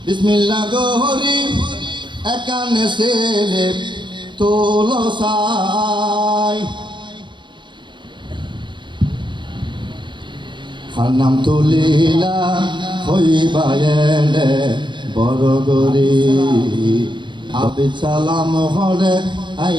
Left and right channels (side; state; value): left; late; 0.23 ms